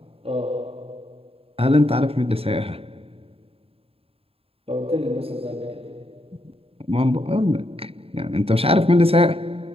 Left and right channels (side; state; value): left; late; 0.28 ms